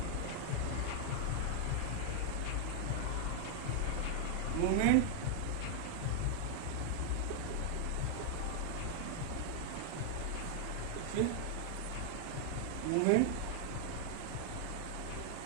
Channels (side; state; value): both; different; correlation -0.01